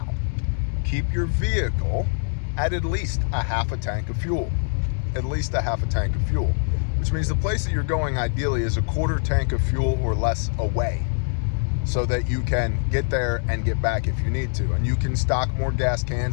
Keep your vehicle at least a half a tank of fuel. At least a half a tank of fuel. Which means the place that you're going ideally is a quarter tank of fuel or less away, so that you can get there and get back if you need to. And you can stock more gas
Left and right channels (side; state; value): right; silent; 63 dB below the other